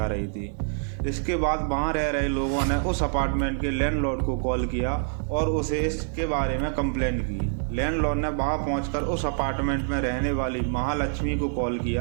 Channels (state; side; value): silent; left; 58 dB below the other